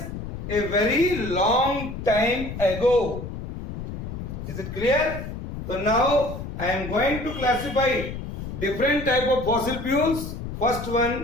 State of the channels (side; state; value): left; noise; rumble, 8 dB below the sound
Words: a very long time ago. Is it clear? So now I am going to classify different type of fossil fuels. First